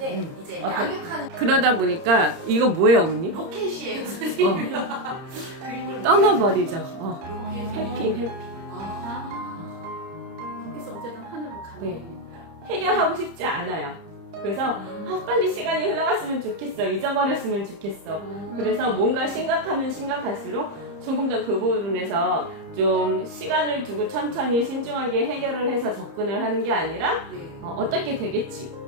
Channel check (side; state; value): left; late; 30 ms